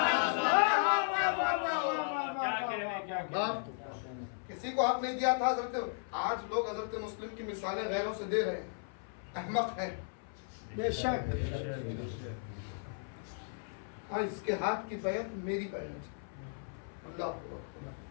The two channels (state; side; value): silent; right; 54 dB below the other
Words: کسی کو حق نہیں دیا تھا حضرت. آج لوگ حضرت مسلم کی مثالیں غیروں سے دے رہے ہیں. احمق ہے. بے شک. ہاں اس کے ہاتھ کی بیعت میری بیعت. اللہ